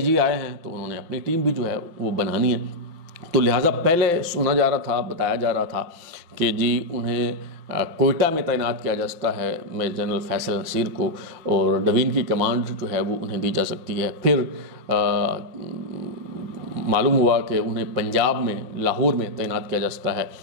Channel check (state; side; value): late; left; 5.8 ms